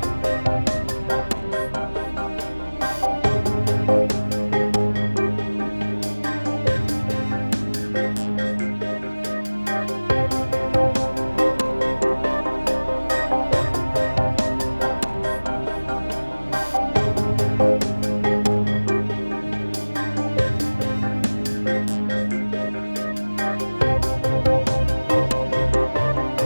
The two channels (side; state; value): both; inverted; correlation -1.00